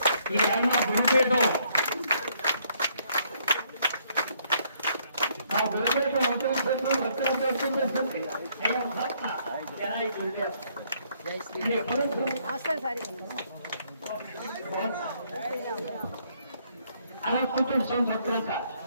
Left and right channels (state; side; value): inverted; both; correlation -0.69